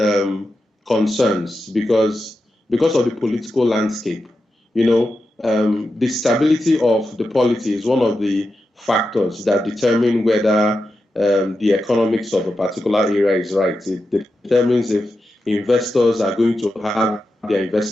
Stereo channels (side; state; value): both; normal; correlation 0.89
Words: concerns because of the political landscape. The stability of the polity is one of the factors that determine whether the economics of a particular area is right. It determines if investors are going to have their